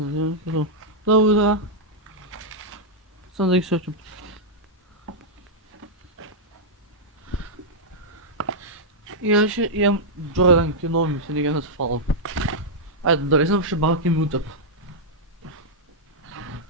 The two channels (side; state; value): both; normal; correlation -0.06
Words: Добре, да. Само да ги сочим. И аз ще имам Джордан кино ми се нега на свалам. Айде, дали съм ще балки ми утъп.